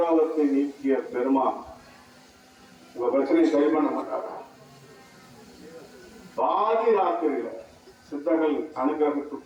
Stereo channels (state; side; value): identical; both; correlation 1.00